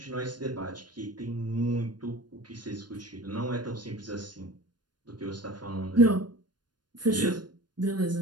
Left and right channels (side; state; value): left; late; 0.70 ms